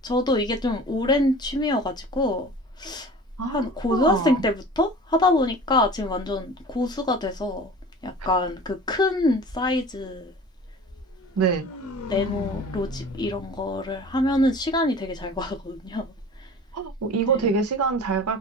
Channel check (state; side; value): normal; both; correlation 0.40